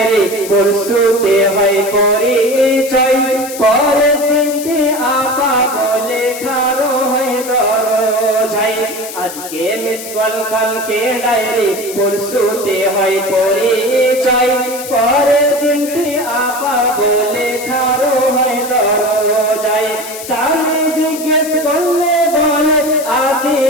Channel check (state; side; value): noise; left; hiss, 11 dB below the sound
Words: পরশুতে হয় পরিচয়, পরের দিনটি আপা বলে খারো হয় দরজাই। আজকে মিস কল কালকে ডায়েরি পরশুতে হয় পরিচয়, পরের দিনটি আপা বলে খারো হয় দরজাই। স্বামী জিজ্ঞেস করলে বলে